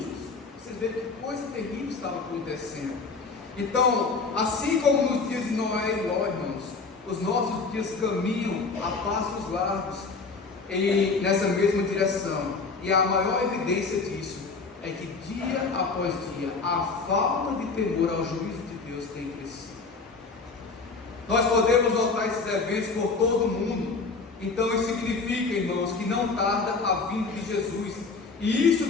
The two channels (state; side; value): quieter; right; 4.3 dB